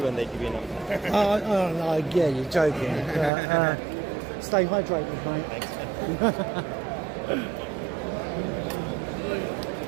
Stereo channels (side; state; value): left; drops out; at 3.3 s